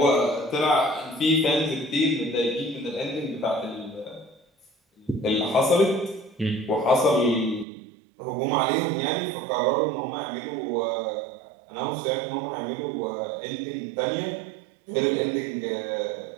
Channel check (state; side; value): drops out; left; at 7.7 s